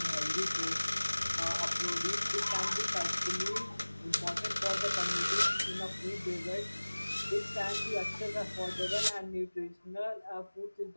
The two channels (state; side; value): inverted; both; correlation -1.00